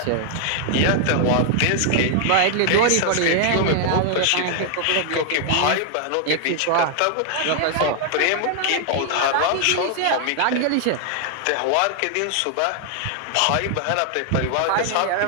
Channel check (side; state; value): both; different; correlation 0.00